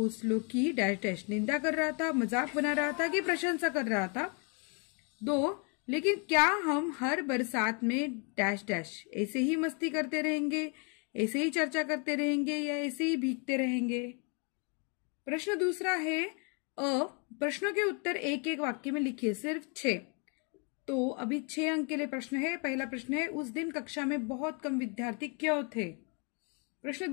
की डैश डैश निंदा कर रहा था, मजाक बना रहा था कि प्रशंसा कर रहा था। 2, लेकिन क्या हम हर बरसात में डैश डैश ऐसे ही मस्ती करते रहेंगे, ऐसे ही चर्चा करते रहेंगे या ऐसे ही भीगते रहेंगे। प्रश्न दूसरा है अ, प्रश्नों के उत्तर एक एक वाक्य में लिखिए, सिर्फ 6। तो अभी 6 अंक के लिए प्रश्न है। पहला प्रश्न है उस दिन कक्षा में बहुत कम विद्यार्थी क्यों थे। प्रश्न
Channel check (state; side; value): quieter; right; 36.1 dB